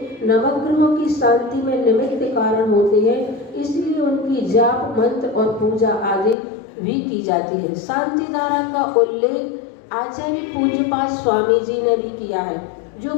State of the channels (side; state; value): right; drops out; at 6.4 s